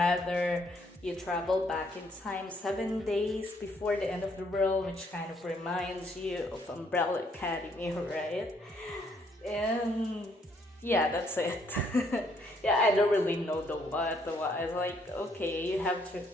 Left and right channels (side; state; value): both; normal; correlation 0.69